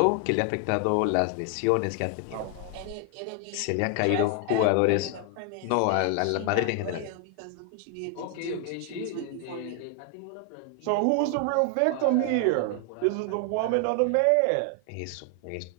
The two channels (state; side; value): different; both; correlation 0.00